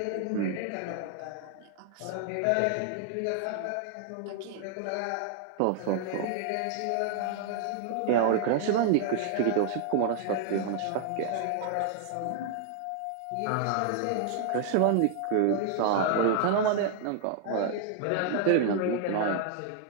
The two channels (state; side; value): different; both; correlation 0.00